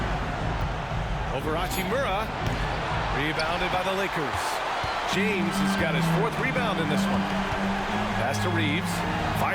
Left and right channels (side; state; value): both; identical; correlation 1.00